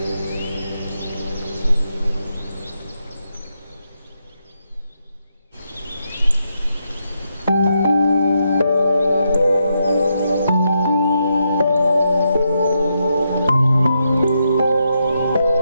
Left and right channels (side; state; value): both; inverted; correlation -0.82